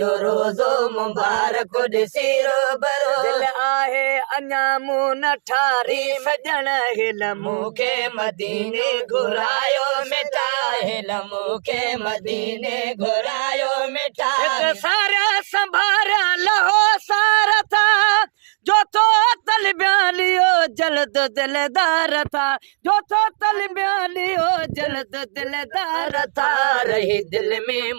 रोज़ो मुबारक ॾिसी रूबरू दिल आहे अञा मूं न ठारी सजण हिल मूंखे मदीने घुरायो मिठा हिल मूंखे मदीने घुरायो मिठा सारा संभारा लहो सारा था जो तो तल ब्यालियो जल्द दिलदार था जो तो तल ब्यालियो जल्द दिलदार था रही दिल में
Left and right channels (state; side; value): silent; left; digital silence